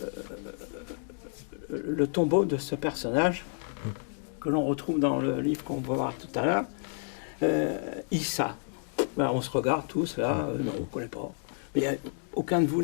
tombeau de ce personnage que l'on retrouve dans le livre qu'on va voir tout à l'heure, Issa. Ben, on se regarde tous là, non, on ne connaît pas. Mais aucun de vous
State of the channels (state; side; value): silent; right; 58 dB below the other